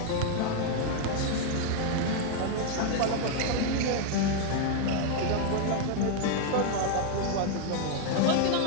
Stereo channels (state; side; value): different; both; correlation 0.00